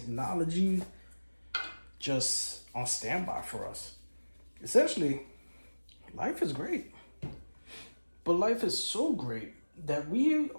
just on standby for us. Essentially, life is great. But life is so great that we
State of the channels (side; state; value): both; inverted; correlation -1.00